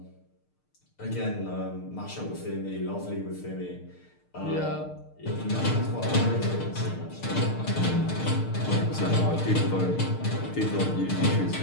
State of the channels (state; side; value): late; right; 6.6 ms